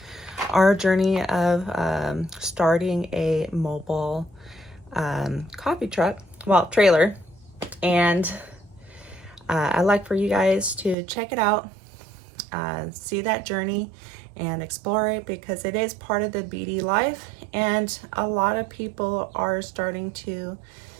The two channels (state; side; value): drops out; left; at 11.0 s